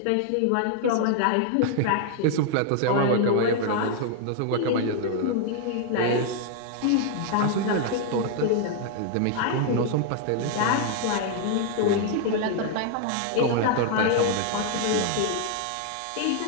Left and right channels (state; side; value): different; both; correlation 0.00